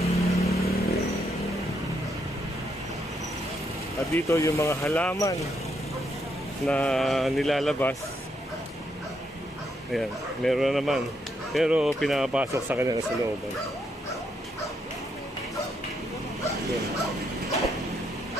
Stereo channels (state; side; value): normal; both; correlation 0.77